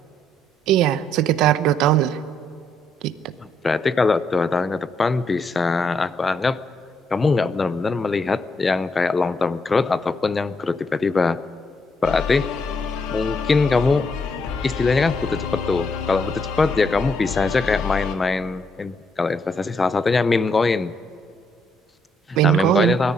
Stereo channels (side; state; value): both; normal; correlation 0.74